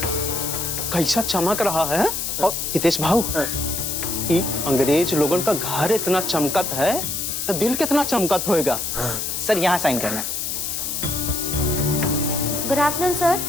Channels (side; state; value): left; noise; hiss, 3 dB below the sound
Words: कैसा चमक रहा है। और हितेश भाऊ, ये अंग्रेज लोगों का घर इतना चमकत है तो दिल कितना चमकत होएगा। सर यहाँ साइन करना है। Good afternoon sir.